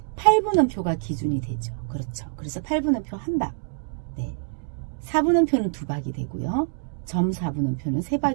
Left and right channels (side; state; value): left; silent; digital silence